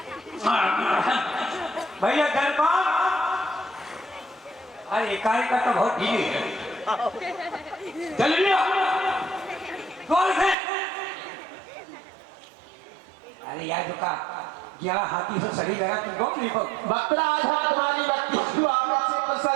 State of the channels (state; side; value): drops out; left; at 10.6 s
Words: भैया जलपान। अरे काय का तो बहुत ढीली है। चल लिया कौन है? अरे यार का 11 हाथी से सही लगा तुम कौन नहीं कौन? बकरा आज हम तुम्हारी भक्ति को आपसे